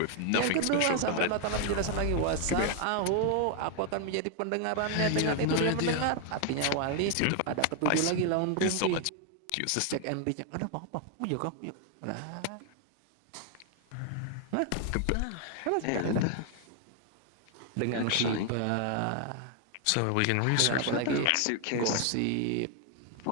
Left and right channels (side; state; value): both; different; correlation 0.00